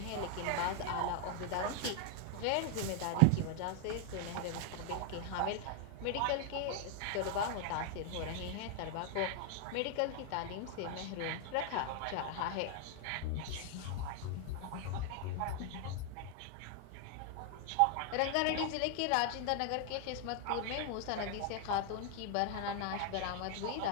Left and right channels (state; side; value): different; both; correlation 0.00